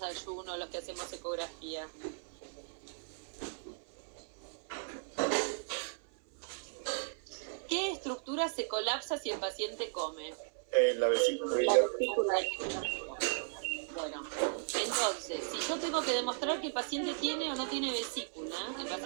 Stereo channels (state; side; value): silent; left; 54 dB below the other